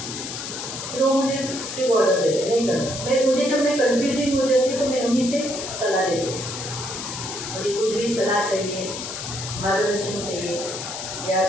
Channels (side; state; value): left; noise; hiss, 7 dB below the sound